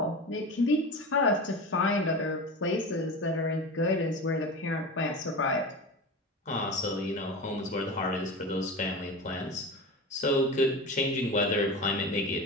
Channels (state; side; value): normal; both; correlation 0.28